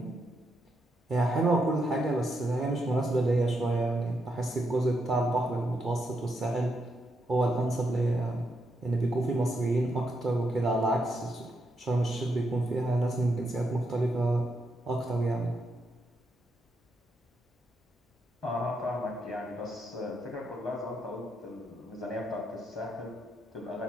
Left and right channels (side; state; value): both; normal; correlation 0.81